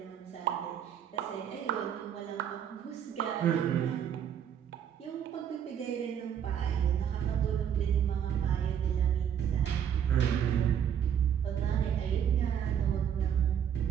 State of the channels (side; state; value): left; quieter; 8.8 dB